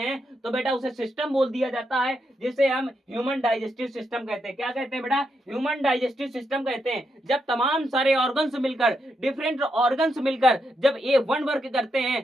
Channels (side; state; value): both; normal; correlation 0.82